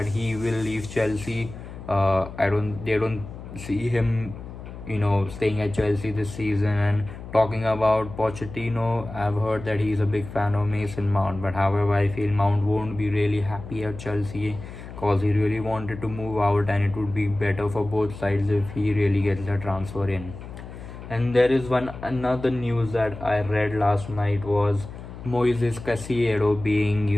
he will leave Chelsea. They don't see him, staying at Chelsea this season. And talking about Pochettino, I've heard that he's a big fan of Mason Mount, but however, I feel Mount won't be really happy at Chelsea because he really wanted to move out, and it would be better for both sides if he really gets the transfer in. And there is another news that I read last night was Moises Caicedo being,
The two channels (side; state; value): left; noise; hum, 13 dB below the sound